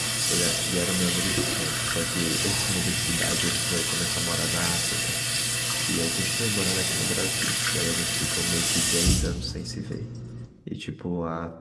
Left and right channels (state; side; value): identical; both; correlation 1.00